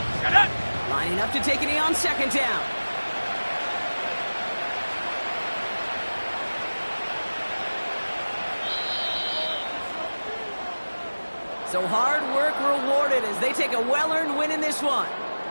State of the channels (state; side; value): inverted; both; correlation -1.00